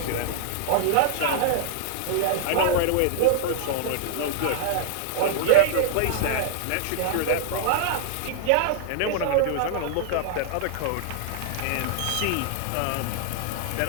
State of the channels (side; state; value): both; different; correlation -0.01